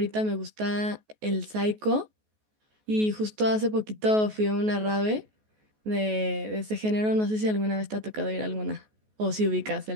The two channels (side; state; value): left; late; 14 ms